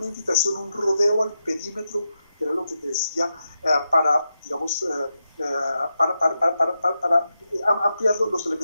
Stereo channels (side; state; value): both; inverted; correlation -0.87